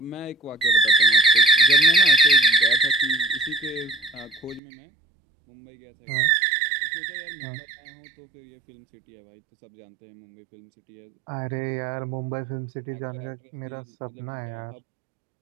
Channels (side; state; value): left; drops out; at 4.6 s